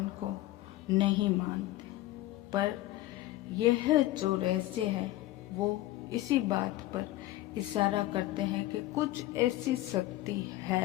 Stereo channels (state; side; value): quieter; right; 16.5 dB